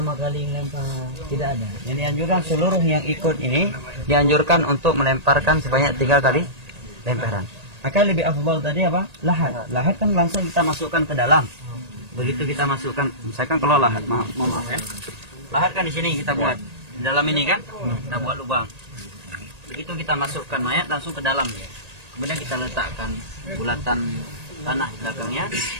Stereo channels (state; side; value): late; left; 1.8 ms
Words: kali melempar, tidak ada. Yang dianjurkan seluruh yang ikut ini dianjurkan untuk melemparkan sebanyak 3 kali lemparan. Maka lebih afdal tadi apa? Lahat. Lahat kan langsung kita masukkan ke dalam. Begitu kita masukkan, misalkan kalau lahat, maaf ya. Lahat kan di sini kita buat. Di dalam ini kan, kita buat lubang. Begitu kita masukkan mayat langsung ke dalam ya. Kemudian kita letakkan bulatan tanah di belakangnya,